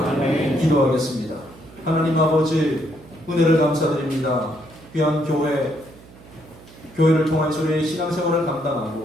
기도하겠습니다. 하나님 아버지 은혜를 감사드립니다. 귀한 교회 교회를 통해서의 신앙생활을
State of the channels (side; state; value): right; noise; hum, 22 dB below the sound